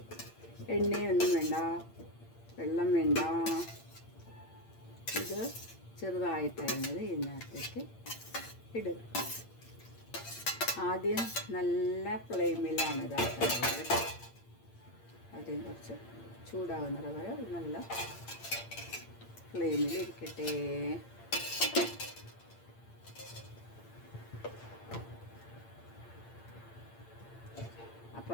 എണ്ണയൊന്നും വേണ്ട, വെള്ളം വേണ്ട. ഇത് ചെറുതായിട്ടരിഞ്ഞത് ഇതിനകത്തേക്ക് ഇടുക. ആദ്യം നല്ല ഫ്ലെയിമിലാണ് ഇതാക്കുന്നത്. ആദ്യം കുറച്ച് ചൂടാകുന്നത് വരെ നല്ല ഫ്ലെയിമിൽ ഇരിക്കട്ടെ.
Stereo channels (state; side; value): late; right; 8.7 ms